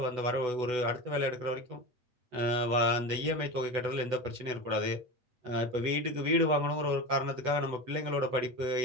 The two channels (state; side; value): late; left; 8.1 ms